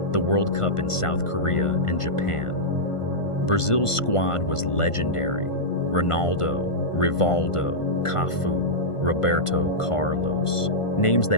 the World Cup in South Korea and Japan. Brazil's squad was legendary. Ronaldo, Rivaldo, Cafu, Roberto Carlos, names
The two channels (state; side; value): late; right; 1.5 ms